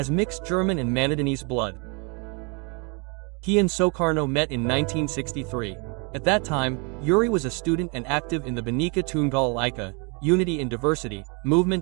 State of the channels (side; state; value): left; quieter; 32.8 dB